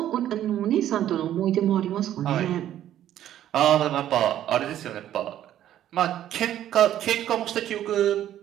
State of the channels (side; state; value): left; quieter; 11.8 dB